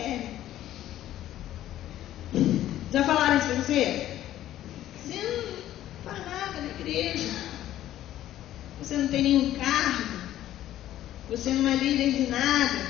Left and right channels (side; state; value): right; quieter; 13.0 dB